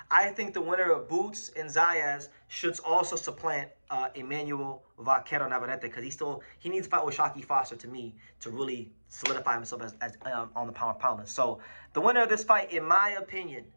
I think the winner of Boots and Zayas should also supplant Emmanuel Vaquero Navarrete because he needs to fight with Shockey Foster to me to really solidify himself as on the pound for pound list. So the winner of this fight, in my opinion,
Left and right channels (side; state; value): both; inverted; correlation -1.00